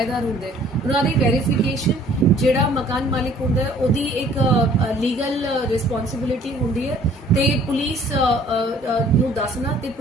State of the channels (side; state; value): both; normal; correlation 0.56